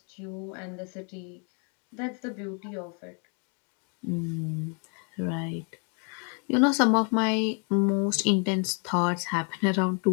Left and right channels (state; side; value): quieter; right; 38.9 dB